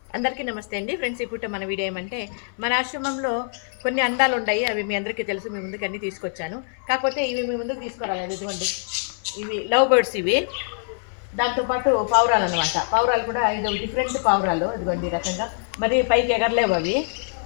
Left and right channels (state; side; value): silent; right; 63 dB below the other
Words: అందరికీ నమస్తే అండి ఫ్రెండ్స్. ఇప్పుడు మన వీడియో ఏమంటే మన ఆశ్రమంలో కొన్ని అందాలు ఉన్నాయి. అవి మీ అందరికీ తెలుసు. మీ ముందుకు అన్నీ తీసుకొచ్చాను. కాకపోతే ఇవి మీ ముందుకు తీసుకురాలేదు. ఇదిగోండి, ఇవి లవ్ బర్డ్స్. ఇవి దాంతోపాటు పావురాలు అనమాట. పావురాలు కూడా 5 డిఫరెంట్ పావురాలు. ఇదిగోండి ఈ రకంగా. మరి పైకి ఎగరలేవు అవి.